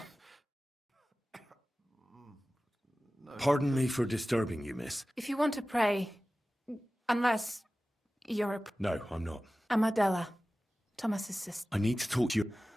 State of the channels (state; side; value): normal; both; correlation 0.96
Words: Pardon me for disturbing you, miss. If you want to pray, unless you're a... No, I'm not. I'm Adela, Thomas's sister. I need to talk to you.